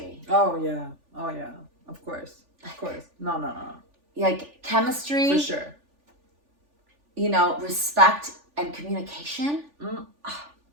Oh yeah. Of course. No. Like chemistry. For sure. You know, respect and communication.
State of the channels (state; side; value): late; left; 3.4 ms